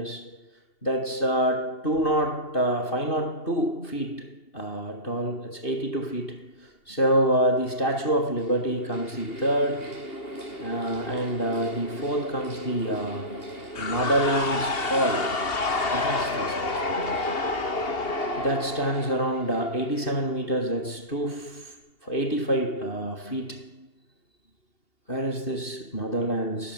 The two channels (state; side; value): late; right; 2.8 ms